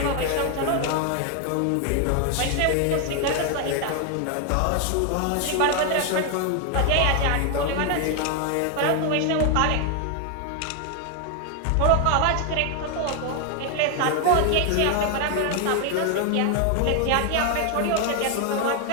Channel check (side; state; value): both; different; correlation 0.01